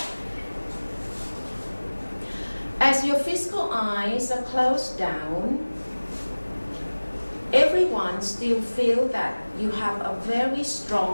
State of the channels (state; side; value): inverted; both; correlation -1.00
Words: As your physical eyes are closed down, everyone still feel that you have a very